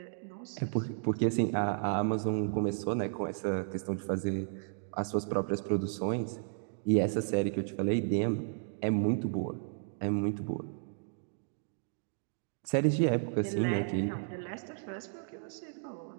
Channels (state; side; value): silent; left; digital silence